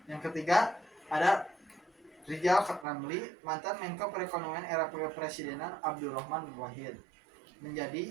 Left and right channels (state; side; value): drops out; left; at 2.9 s